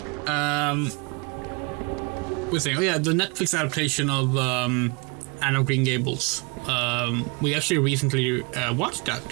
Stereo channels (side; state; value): left; quieter; 30.9 dB